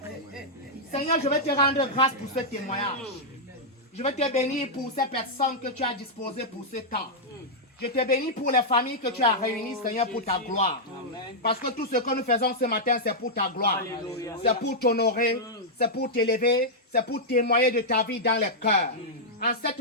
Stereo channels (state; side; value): normal; both; correlation -0.07